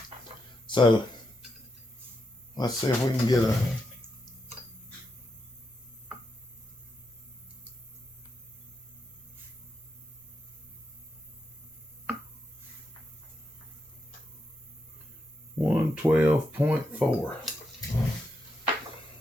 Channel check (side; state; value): both; normal; correlation 0.82